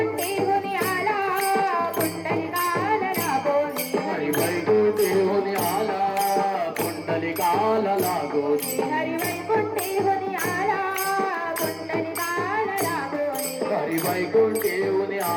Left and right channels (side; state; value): both; identical; correlation 1.00